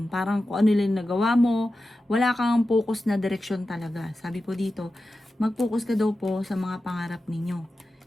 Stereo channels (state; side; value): normal; both; correlation 0.92